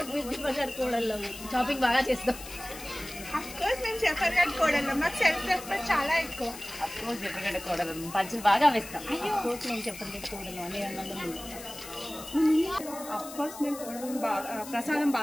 మేము జఫర్గఢ్ కోడల్లో షాపింగ్ బాగా చేస్తాం. అఫ్ కోర్స్ మేము జఫర్గఢ్ కోడల్లో మాకు సెల్ఫ్ రెస్పెక్ట్ చాలా ఎక్కువ. అఫ్ కోర్స్ జఫర్గఢ్ కోడలు పంచులు బాగా వేస్తాం. అఫ్ కోర్స్ మేము జఫర్గఢ్ కోడలు అనే రంగంలో ముందుంటాం. అఫ్ కోర్స్ మేము కోడలు బాగా ప్రసాదం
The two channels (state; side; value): noise; left; hiss, 13 dB below the sound